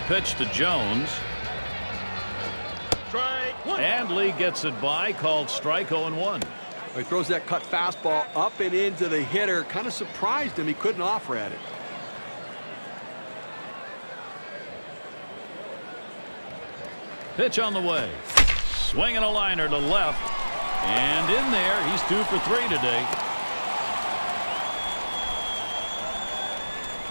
pitch to Jones. Strike one. And Lee gets it by, called strike 0-1. He throws that cut fastball up and into the hitter. Kind of surprised him. He couldn't offer at it. Pitch on the way. Swinging a liner to left. And in there, he's 2 for 3 today.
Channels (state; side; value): inverted; both; correlation -1.00